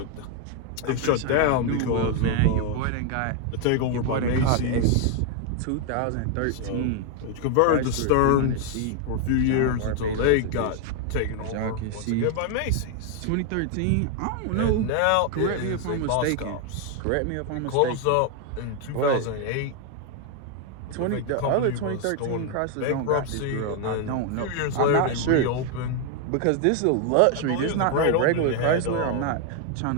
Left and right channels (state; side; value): different; both; correlation 0.00